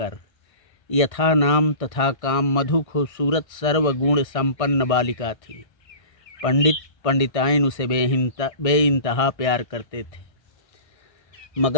यथा नाम तथा काम मधु खूबसूरत सर्वगुण संपन्न बालिका थी। पंडित पंडिताइन उसे बेइंतहा प्यार करते थे,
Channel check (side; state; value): right; late; 1.6 ms